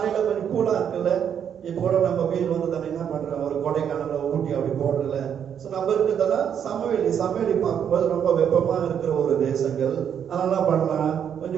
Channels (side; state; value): left; quieter; 8.4 dB